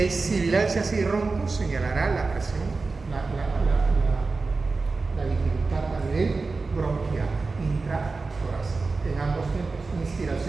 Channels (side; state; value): left; quieter; 4.0 dB